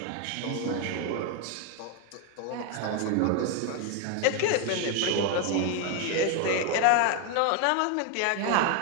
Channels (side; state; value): both; different; correlation 0.01